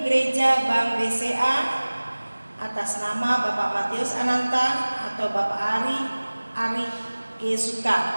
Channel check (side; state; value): both; inverted; correlation -1.00